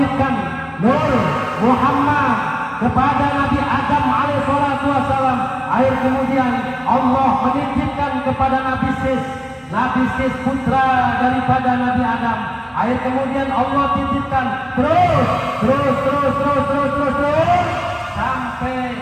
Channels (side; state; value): both; identical; correlation 1.00